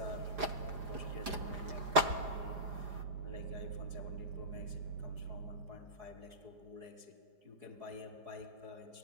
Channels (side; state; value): left; late; 4.9 ms